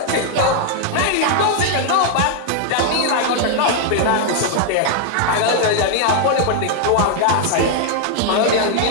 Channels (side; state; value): both; different; correlation -0.01